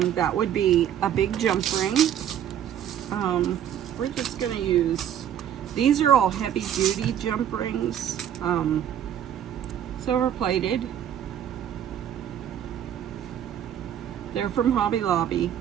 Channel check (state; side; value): quieter; left; 9.9 dB